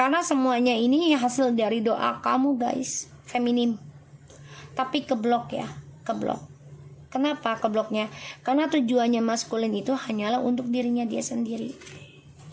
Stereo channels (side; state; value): both; identical; correlation 1.00